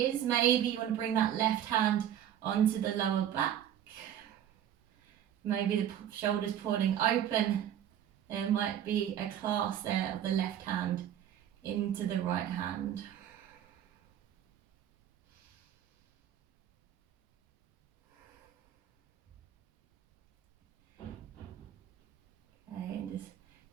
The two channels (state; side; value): quieter; left; 10.4 dB